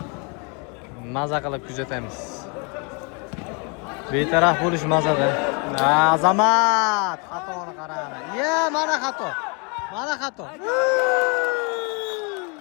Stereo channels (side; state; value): right; quieter; 34.0 dB